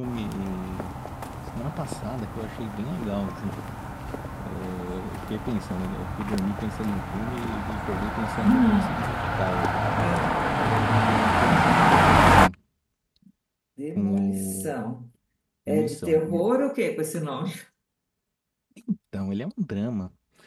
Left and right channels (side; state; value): both; identical; correlation 1.00